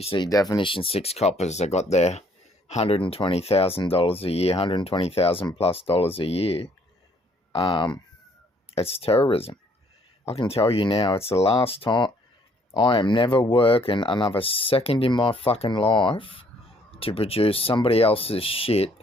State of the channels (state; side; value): normal; both; correlation 0.64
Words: see, definition 6 coppers, they got their $120,000 a year, $120,000+ a year. It's terrorism. I can tell you now, it's the last time. I am never working another second in my fucking life to produce somebody else's shit